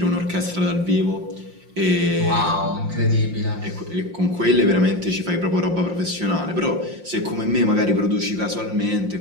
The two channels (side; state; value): left; late; 5.7 ms